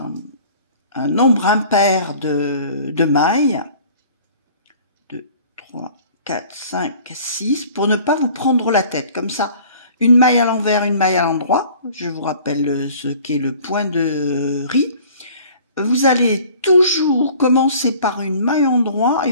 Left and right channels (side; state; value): both; inverted; correlation -0.49